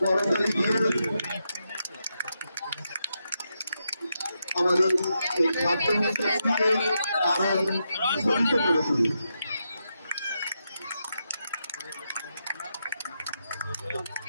করতালি দিয়ে আমাদের এই খাদ্য অনুষ্ঠানকে আরো ধ্বনিত করে তুলি।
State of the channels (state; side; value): inverted; both; correlation -0.84